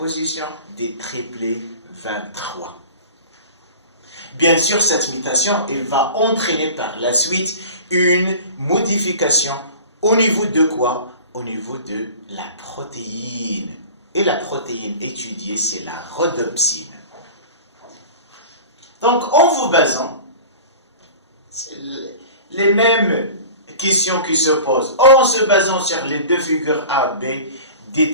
des triplés 23. Bien sûr, cette mutation, elle va entraîner par la suite une modification au niveau de quoi? Au niveau de la protéine. Et la protéine étudiée, c'est la rhodopsine. Donc, en vous basant, les mêmes questions qui se posent, en se basant sur les deux figures A, B,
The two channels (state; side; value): inverted; both; correlation -0.38